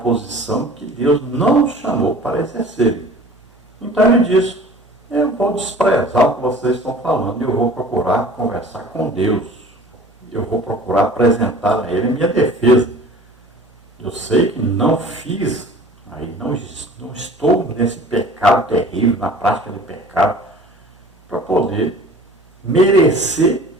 que Deus não os chamou para exercerem. Então ele diz: eu vou desprezar o que vocês estão falando, eu vou procurar conversar com Deus, eu vou procurar apresentar a Ele a minha defesa. Eu sei que não fiz, aí não estou nesse pecado terrível, na prática de pecado, para poder merecer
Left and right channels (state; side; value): normal; both; correlation 0.45